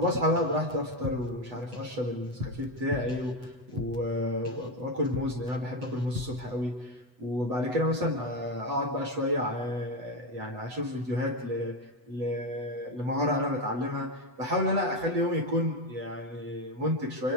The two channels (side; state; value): left; late; 8.1 ms